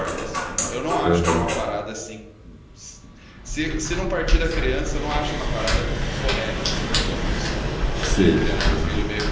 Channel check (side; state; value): both; identical; correlation 1.00